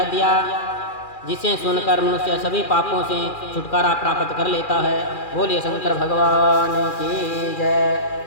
दिया, जिसे सुनकर मनुष्य सभी पापों से छुटकारा प्राप्त कर लेता है। बोलिए शंकर भगवान की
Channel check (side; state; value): right; late; 2.4 ms